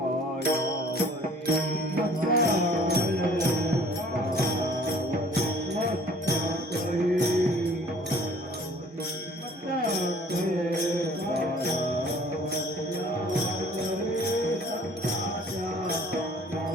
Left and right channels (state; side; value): normal; both; correlation 0.53